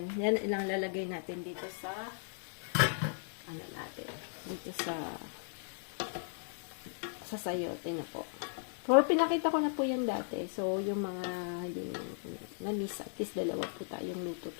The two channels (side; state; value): right; silent; digital silence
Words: Yan ilang lalagay natin dito sa dito sa sayote na po. Pero pinakita ko na po yan dati. So, yung mga yung na-miss, at least dalawa po tayong luto